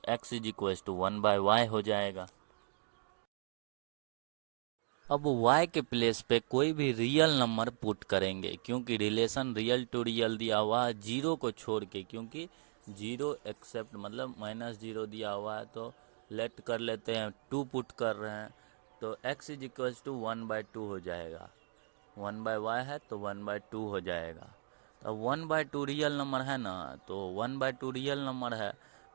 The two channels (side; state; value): left; silent; digital silence